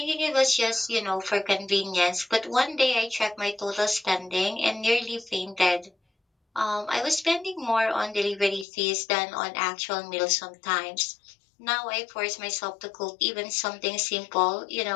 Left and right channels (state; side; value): drops out; right; at 8.7 s